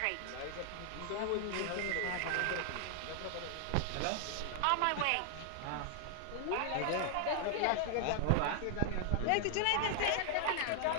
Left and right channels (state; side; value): different; both; correlation 0.00